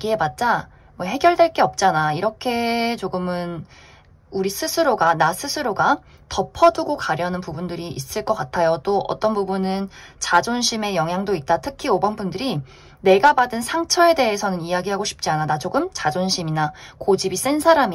뭐 해결될 게 없잖아, 이렇게 조금은 우리 스스로가, 나 스스로가 덮어두고 가려는 부분들이 있을 것 같아요. 또 어떤 부분은 자존심의 영향도 있다. 특히 5번 분들이 내가 받은 상처에 대해서는 이야기하고 싶지 않아. 나 조금 자존심이나 고집이 센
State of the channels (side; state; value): both; identical; correlation 1.00